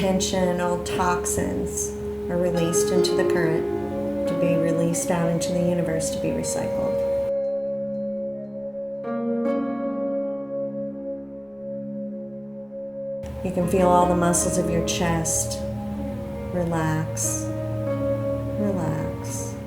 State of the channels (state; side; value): identical; both; correlation 1.00